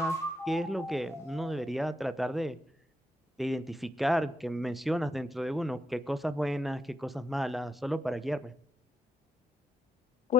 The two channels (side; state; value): both; normal; correlation 0.83